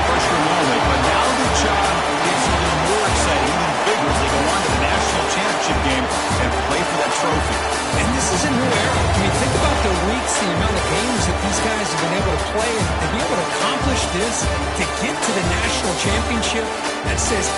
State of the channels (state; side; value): identical; both; correlation 1.00